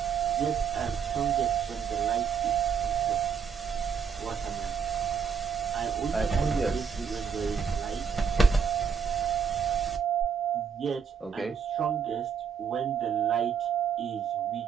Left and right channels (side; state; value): left; quieter; 6.7 dB